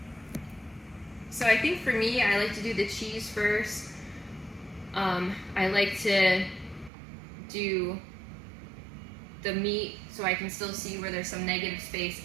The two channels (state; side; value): drops out; left; at 6.9 s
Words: So I think for me, I like to do the cheese first. I like to do the meat so I can still see where there's some negative space,